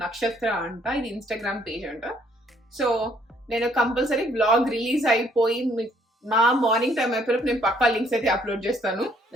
నక్షత్ర అంట, ఇది ఇన్స్టాగ్రామ్ పేజ్ అంట. సో నేను కంపల్సరీ బ్లాగ్ రిలీజ్ అయిపోయి మా మార్నింగ్ టైం అయిపోయి నేను పక్కా లింక్స్ అయితే అప్లోడ్ చేస్తాను.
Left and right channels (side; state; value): both; normal; correlation 0.65